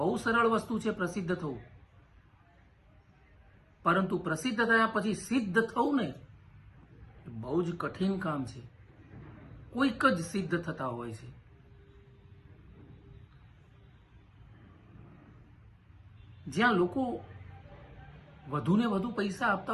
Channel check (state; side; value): identical; both; correlation 1.00